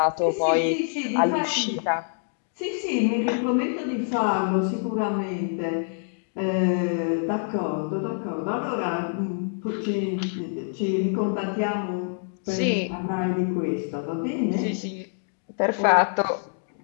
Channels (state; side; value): silent; right; digital silence